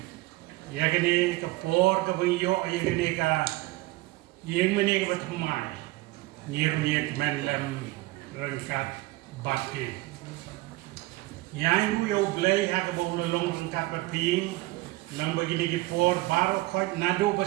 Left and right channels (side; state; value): left; quieter; 19.9 dB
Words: ya ga ni ka por ka bang yo ya ga ni ka yeng mene ka bathmai ngir mi ka men lam rangkat bat ke yang yo blai ha ka bo long rangkat ba phi Lang bagi di por baru kau nado